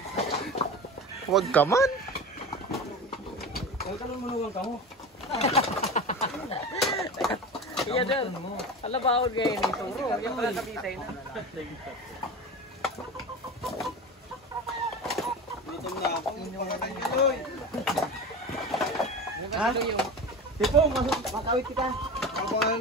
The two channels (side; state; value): both; normal; correlation 0.29